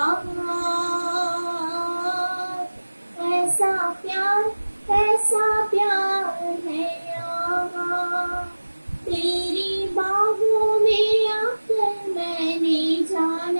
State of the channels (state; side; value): inverted; both; correlation -1.00